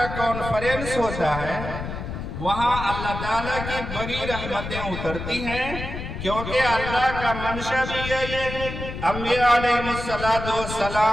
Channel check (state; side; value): noise; left; rumble, 7 dB below the sound